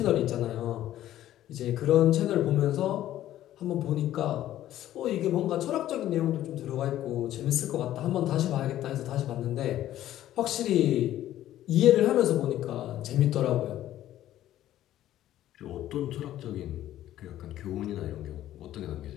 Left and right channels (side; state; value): right; quieter; 13.0 dB